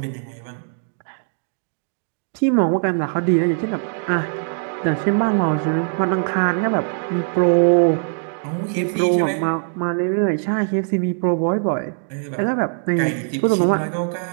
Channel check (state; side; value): silent; left; 59 dB below the other